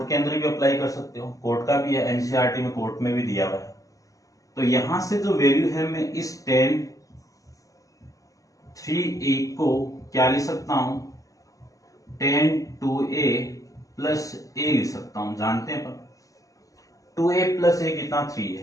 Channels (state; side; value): late; right; 0.16 ms